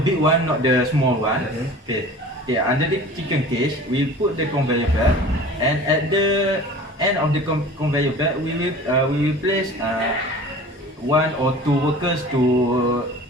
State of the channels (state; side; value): normal; both; correlation 0.41